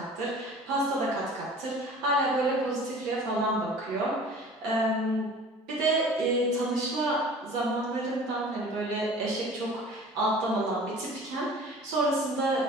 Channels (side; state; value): both; normal; correlation 0.44